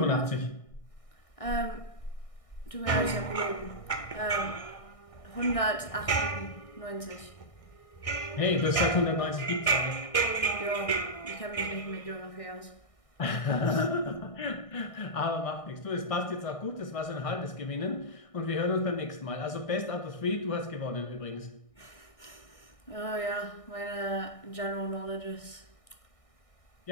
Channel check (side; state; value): right; late; 1.6 ms